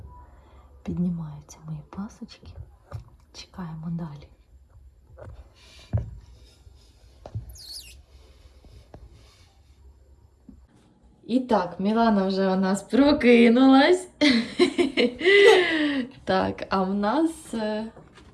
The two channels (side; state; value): both; identical; correlation 1.00